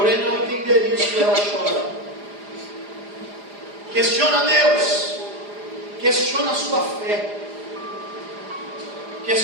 não entender isso, ela chora. Questiona Deus, questiona a sua fé,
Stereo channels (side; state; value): left; late; 4.9 ms